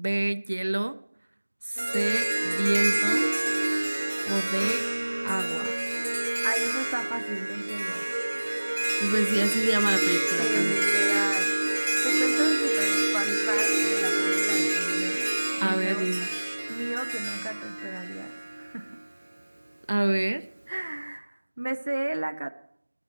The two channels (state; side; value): inverted; both; correlation -1.00